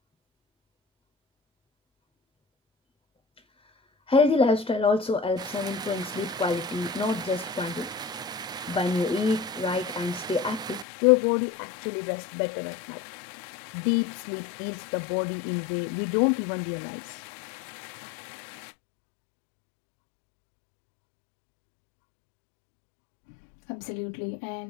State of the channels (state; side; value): drops out; right; at 10.9 s